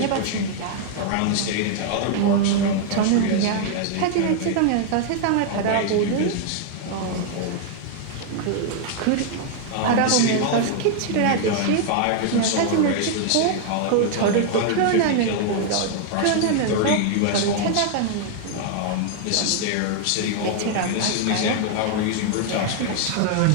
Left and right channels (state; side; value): different; both; correlation 0.00